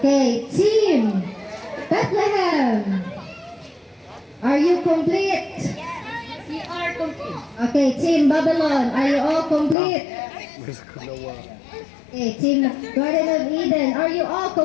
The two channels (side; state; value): right; drops out; at 9.8 s